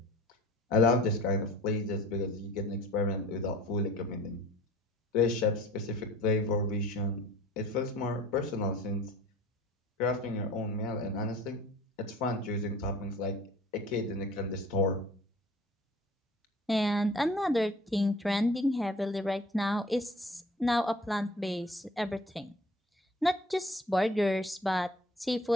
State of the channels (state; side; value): normal; both; correlation 0.46